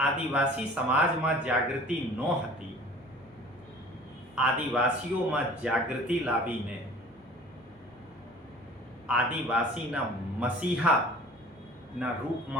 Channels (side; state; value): both; normal; correlation 0.46